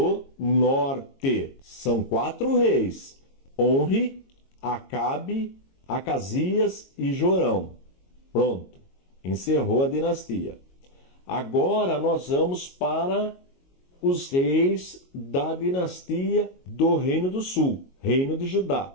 Norte. São 4 reis, Onri, Acabe, Acasias e Jorão. Pronto, encerrou a dinastia. Agora nós vamos para os reis da dinastia do Reino do Sul, Reino de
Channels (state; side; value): late; right; 22 ms